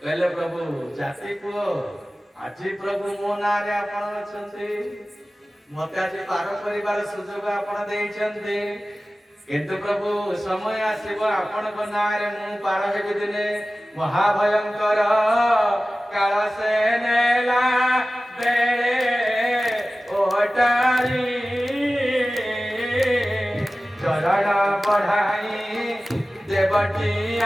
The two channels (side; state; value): both; normal; correlation 0.96